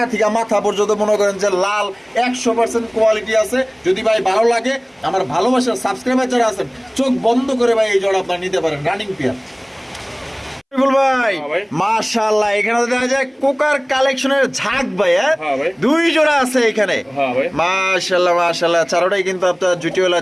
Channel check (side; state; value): both; identical; correlation 1.00